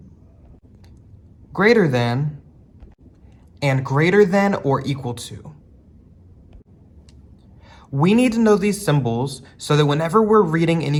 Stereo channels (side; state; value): both; identical; correlation 1.00